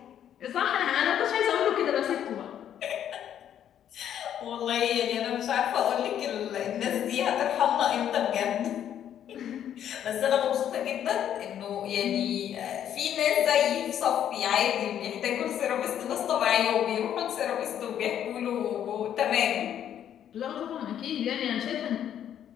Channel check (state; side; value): quieter; right; 10.0 dB